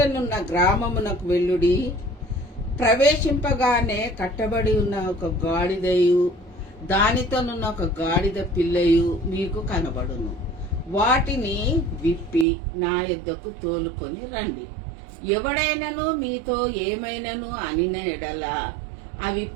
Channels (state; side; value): drops out; left; at 12.5 s